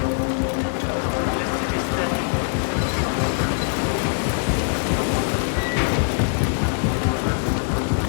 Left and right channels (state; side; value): silent; right; 64 dB below the other